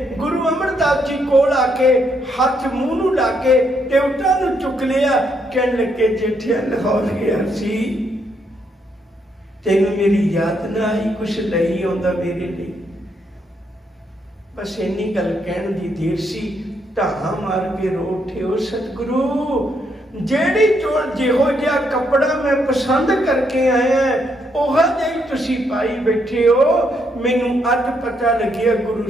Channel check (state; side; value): normal; both; correlation 0.75